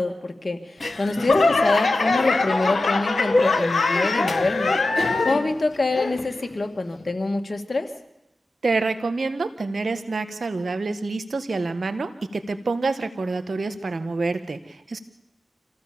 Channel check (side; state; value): both; normal; correlation 0.93